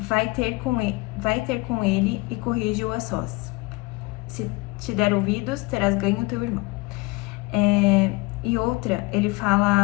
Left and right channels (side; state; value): right; quieter; 24.6 dB